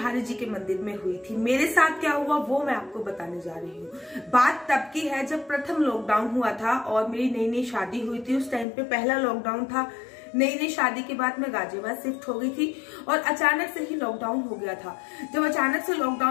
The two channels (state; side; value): drops out; right; at 8.7 s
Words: जी के मंदिर में हुई थी। मेरे साथ क्या हुआ वो मैं आपको बताने जा रही हूँ। बात तब की है जब प्रथम लॉकडाउन हुआ था और मेरी नई नई शादी हुई थी। उस टाइम पे पहला लॉकडाउन था। नई नई शादी के बाद मैं गाजियाबाद शिफ्ट हो गई थी और अचानक से ही लॉकडाउन हो गया था। जब अचानक से